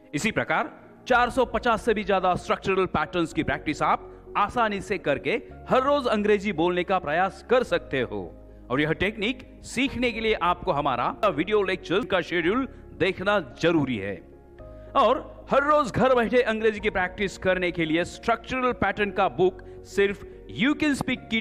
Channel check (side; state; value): both; identical; correlation 1.00